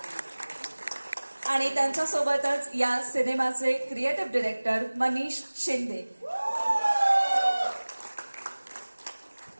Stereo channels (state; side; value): inverted; both; correlation -1.00